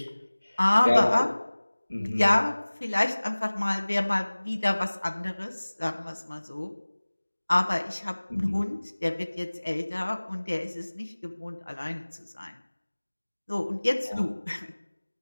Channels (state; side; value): inverted; both; correlation -1.00